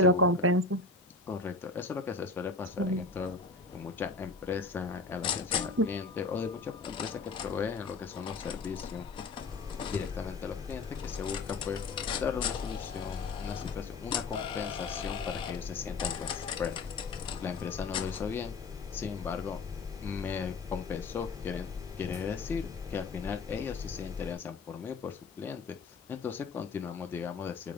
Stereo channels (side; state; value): right; quieter; 3.8 dB